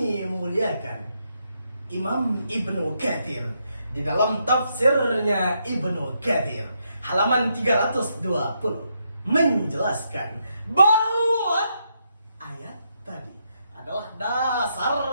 muliakan, Imam Ibnu Katsir di dalam tafsirnya Ibnu Katsir halaman 320 menjelaskan bahwa ayat tadi adalah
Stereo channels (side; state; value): both; inverted; correlation -0.79